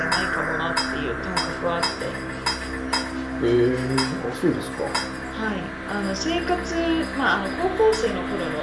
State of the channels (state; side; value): identical; both; correlation 1.00